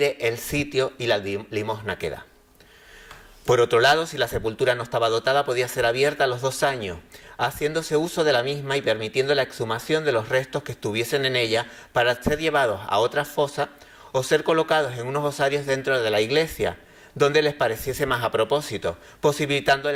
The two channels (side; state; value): both; identical; correlation 1.00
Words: el sitio y la limosna que da. Por otro lado, si la sepultura no estaba dotada, podía ser abierta a los 2 años, haciéndose uso de la misma y permitiendo la exhumación de los restos que estuviesen en ella para ser llevados a otra fosa o ser colocados en unos osarios dentro de la iglesia, donde les pareciese más a propósito, posibilitando